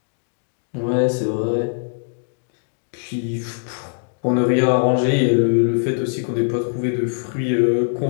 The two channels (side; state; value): right; silent; digital silence